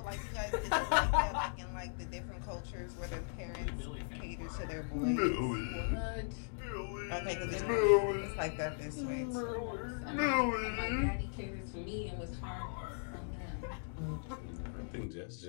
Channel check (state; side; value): silent; right; digital silence